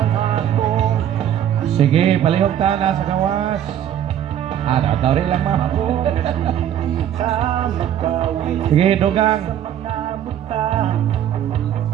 Sige, palihog ta na sa gawas. Daw rin lang ma'am. Sige, dugang.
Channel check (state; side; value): quieter; left; 10.4 dB